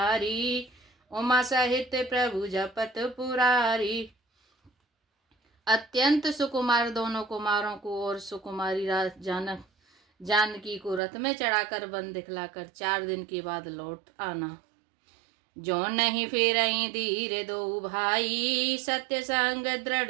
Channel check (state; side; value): drops out; left; at 11.0 s